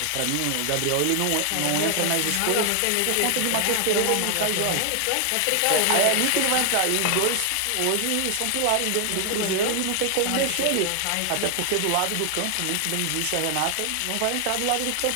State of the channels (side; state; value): both; different; correlation 0.00